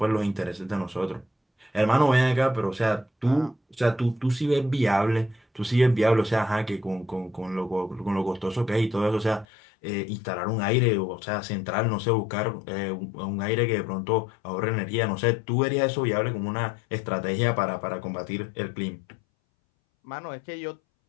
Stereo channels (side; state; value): right; drops out; at 9.5 s